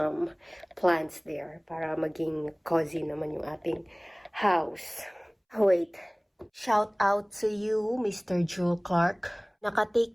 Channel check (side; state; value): both; identical; correlation 1.00